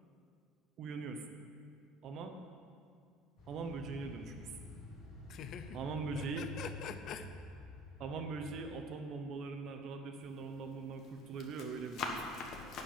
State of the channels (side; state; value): both; normal; correlation 0.46